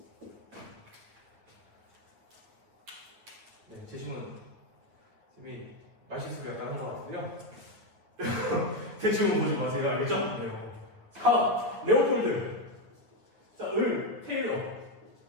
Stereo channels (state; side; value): late; left; 9.2 ms